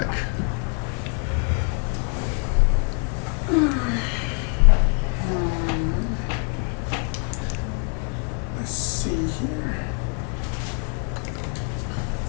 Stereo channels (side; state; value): right; quieter; 39.1 dB